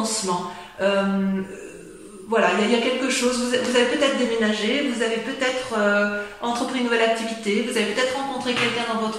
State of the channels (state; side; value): identical; both; correlation 1.00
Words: Il y a quelque chose. Vous avez peut-être déménagé, vous avez peut-être entrepris une nouvelle activité, vous avez peut-être rencontré quelqu'un dans